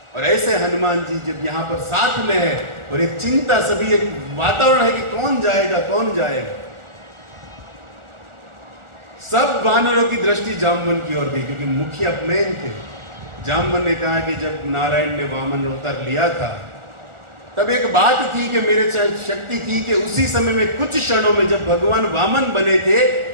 और ऐसे हनुमान जी जब यहाँ पर साथ में है और एक चिंता, सभी एक वातावरण है कि कौन जाएगा कौन जाएगा, सब वानरों की दृष्टि जामवन की ओर गई, क्योंकि मुखिया मेन थे। जामवन ने कहा कि जब नारायण ने वामन अवतार लिया था तब एक बात थी कि मेरे शक्ति थी कि उसी समय में कुछ क्षणों में, जब भगवान वामन बने थे,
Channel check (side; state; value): left; late; 1.4 ms